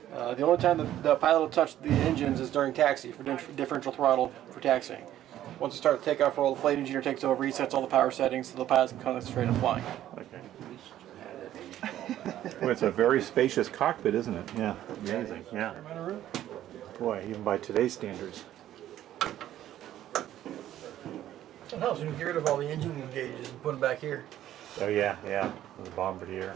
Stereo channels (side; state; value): left; quieter; 12.5 dB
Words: The only time the pilot will touch the engines is during taxi for differential throttle for taxiing. Once you start the takeoff roll, the flight engineer takes over. He sets all the power settings so the pilot can concentrate on flying. Okay. Well, it's a very spacious cockpit, isn't it? Yeah. Amazing. Yeah. Boy, even by today's standards. It helps when you get rid of all the engine gauges and put them back here. Oh yeah, yeah, the bombardier.